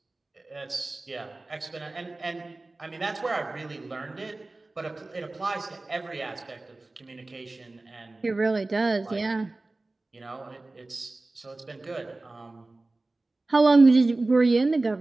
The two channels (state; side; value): quieter; left; 3.1 dB